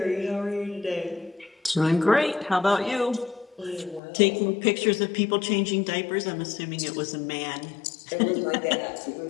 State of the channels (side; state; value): right; drops out; at 4.0 s